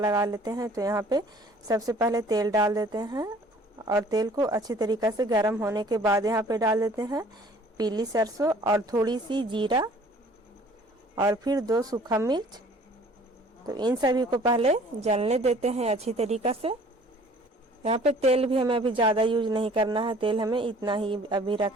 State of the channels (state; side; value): normal; both; correlation 0.53